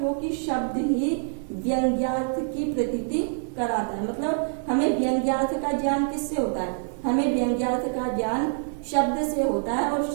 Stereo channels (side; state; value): left; silent; digital silence